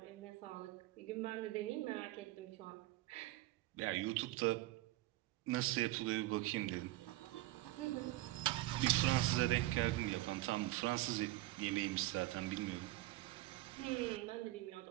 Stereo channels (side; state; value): left; quieter; 17.3 dB